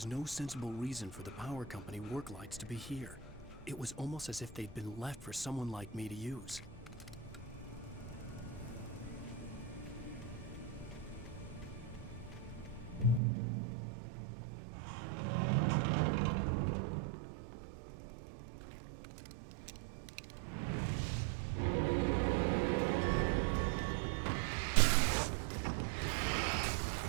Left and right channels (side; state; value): left; drops out; at 13.2 s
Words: no sensible reason for the power company work lights to be here. It was almost as if they'd been left for someone like me to use.